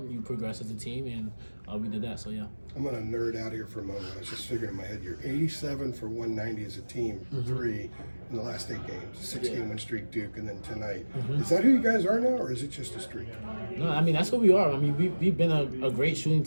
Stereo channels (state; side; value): inverted; both; correlation -1.00